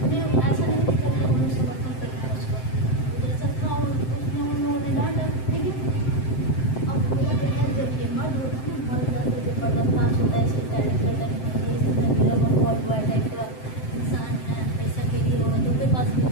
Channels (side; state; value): right; late; 7.7 ms